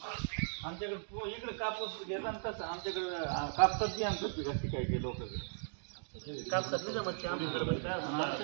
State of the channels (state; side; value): silent; left; digital silence